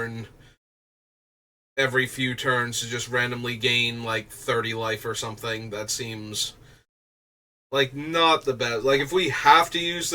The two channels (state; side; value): identical; both; correlation 1.00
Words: every few turns to just randomly gain like 30 life or something. That seems like not the best. Like, if we have to use